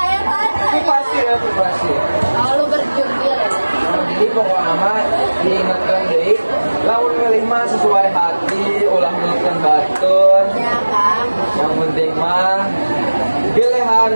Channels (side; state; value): both; inverted; correlation -1.00